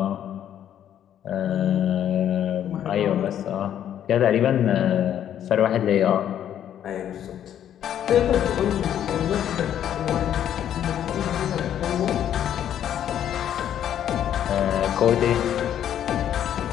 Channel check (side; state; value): right; quieter; 10.3 dB